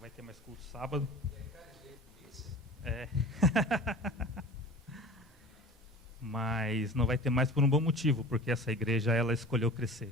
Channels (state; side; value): normal; both; correlation 0.40